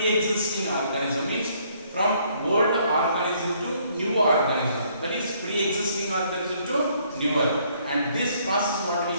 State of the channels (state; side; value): inverted; both; correlation -0.66